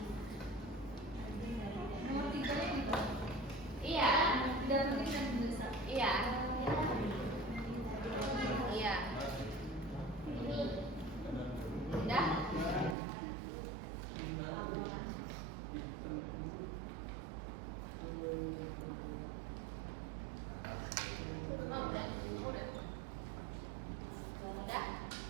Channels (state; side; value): drops out; left; at 13.0 s